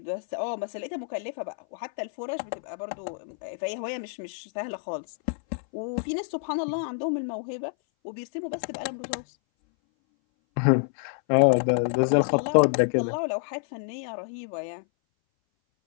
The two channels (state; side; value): silent; right; 58 dB below the other